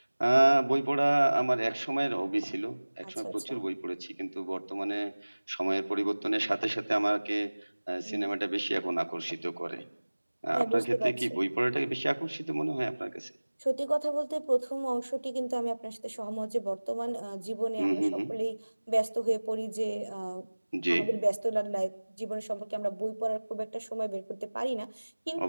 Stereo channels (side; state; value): both; inverted; correlation -1.00